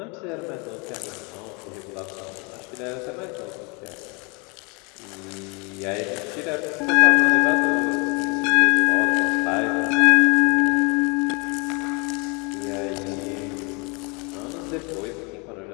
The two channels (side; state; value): right; quieter; 30.9 dB